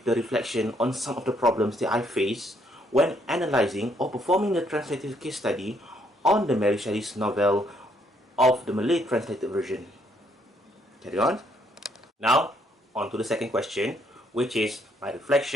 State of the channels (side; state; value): both; normal; correlation 0.70